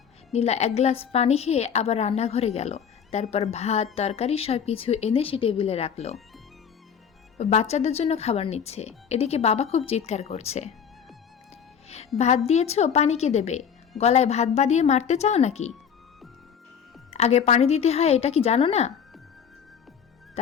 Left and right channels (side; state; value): right; quieter; 7.5 dB